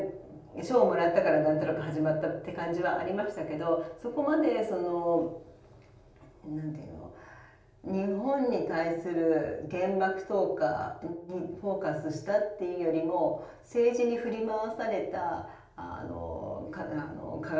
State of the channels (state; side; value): identical; both; correlation 1.00